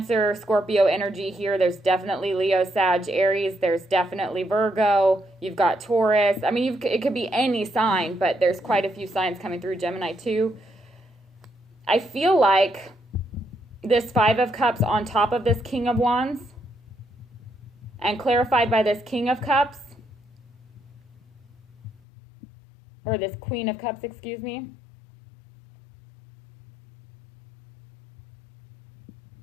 Scorpio energy here. There's definitely Leo, Sag, Aries. There's definitely Virgo. You've got Taurus. I mean, it could be any sign, but there's quite a few signs coming through. Gemini too. I feel like this Five of Cups on top of this King of Wands and clarified by this King of Cups, or this Queen of Cups, excuse me.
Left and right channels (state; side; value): drops out; right; at 22.0 s